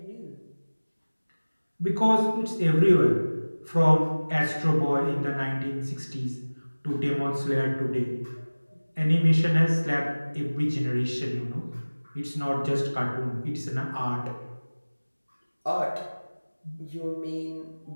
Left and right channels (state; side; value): inverted; both; correlation -1.00